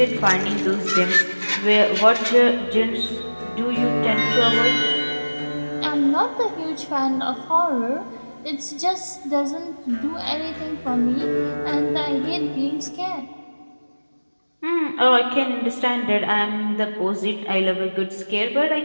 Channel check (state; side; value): inverted; both; correlation -1.00